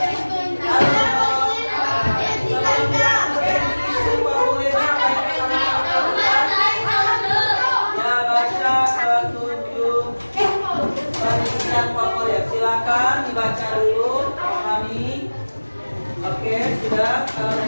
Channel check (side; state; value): both; inverted; correlation -1.00